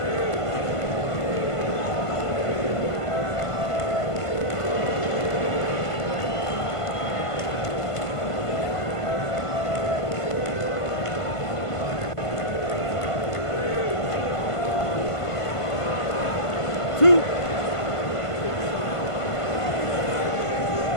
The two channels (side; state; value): right; late; 1.5 ms